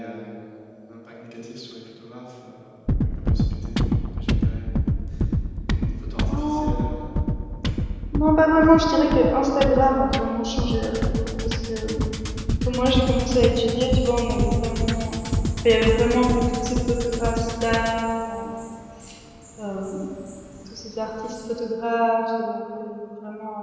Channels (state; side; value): identical; both; correlation 1.00